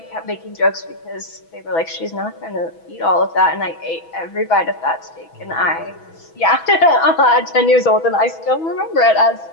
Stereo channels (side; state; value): right; late; 6.1 ms